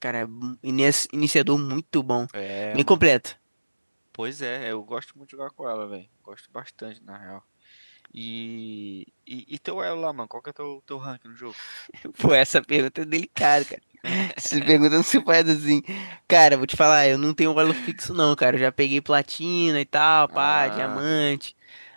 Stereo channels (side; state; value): both; inverted; correlation -1.00